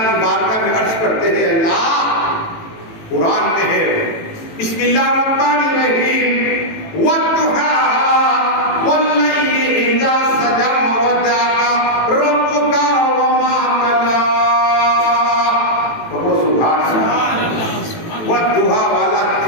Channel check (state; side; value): late; right; 18 ms